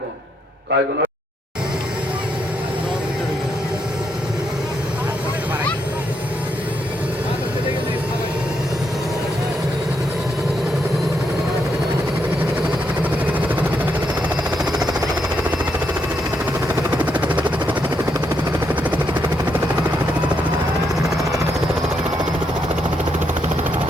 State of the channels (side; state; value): both; normal; correlation 0.79